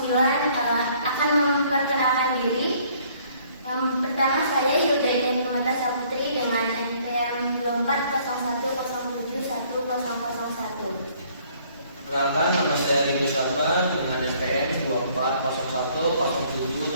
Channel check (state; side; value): inverted; both; correlation -0.61